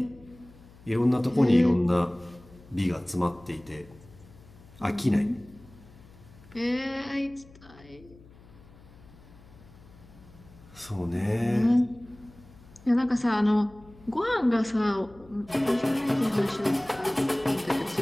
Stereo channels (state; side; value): noise; left; hum, 23 dB below the sound